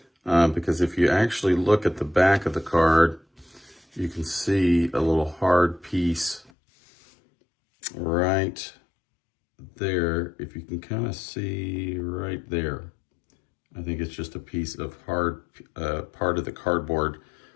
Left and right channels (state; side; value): drops out; right; at 6.5 s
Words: Because if you actually look at the back of the card, you can see a little hard piece right there. If you can kind of see right there, I think it's just a piece of hard part of the cardboard